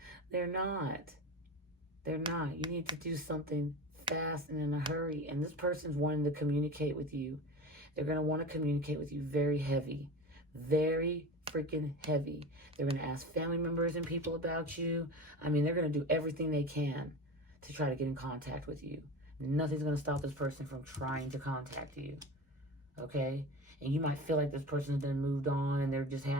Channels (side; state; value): both; normal; correlation 0.31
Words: They're not. They're not. You need to do something fast and in a hurry. And this person's wanting to communicate with you. They're going to want to communicate with you very heavy. Very freaking heavy. They're going to ask family members and people about you. I mean, they're going to do everything they can to try to get in contact with you. Nothing's going to stop this person from trying to contact you. Okay? And you might feel like this person's been moved on and they're just